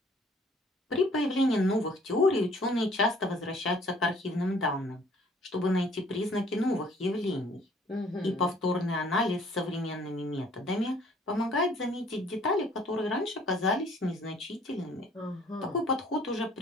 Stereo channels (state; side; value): normal; both; correlation 0.58